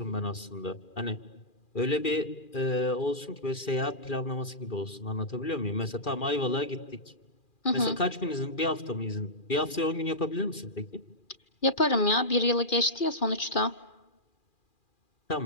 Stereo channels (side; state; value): right; late; 2.4 ms